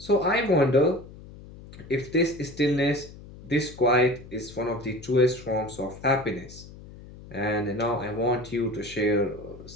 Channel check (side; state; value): left; noise; hum, 17 dB below the sound